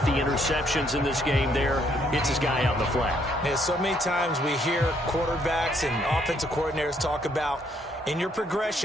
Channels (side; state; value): both; normal; correlation 0.69